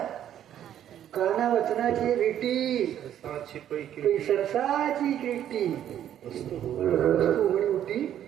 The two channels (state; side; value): quieter; left; 10.7 dB